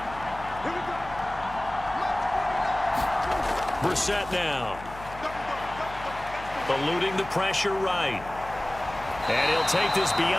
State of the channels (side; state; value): left; noise; hum, 15 dB below the sound